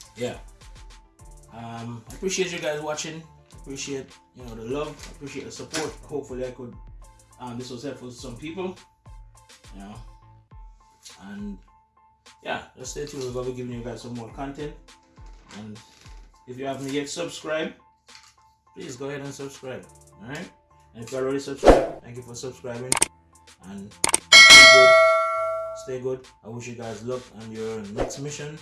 yeah, I appreciate you guys watching. Appreciate, you know, the love, appreciate the support. Hopefully I could this was helpful to some people, you know, and yeah, just stay tuned. We're going to be giving you guys some more content, and if you haven't yet subscribed, please go ahead and subscribe. Alright, and if you're already subscribed, thank you for subscribing, and stay good. I wish you guys luck on your next mission,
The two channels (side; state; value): both; identical; correlation 1.00